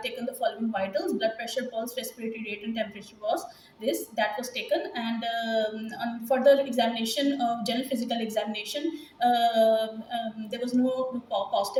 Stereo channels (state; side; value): identical; both; correlation 1.00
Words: the following vitals: blood pressure, pulse, respiratory rate, and temperature that was taken. And on further examination, general physical examination, there was no